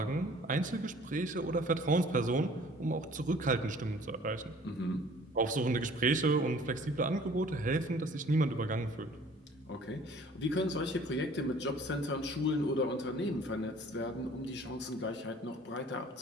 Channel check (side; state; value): both; normal; correlation 0.52